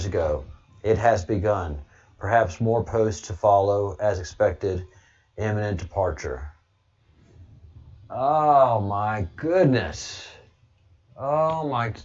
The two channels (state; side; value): identical; both; correlation 1.00